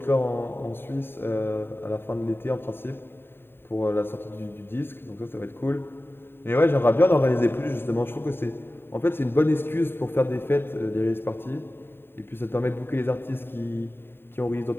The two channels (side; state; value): right; late; 0.11 ms